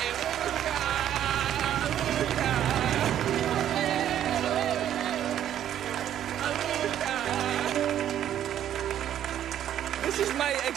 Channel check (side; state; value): left; quieter; 10.8 dB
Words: This is my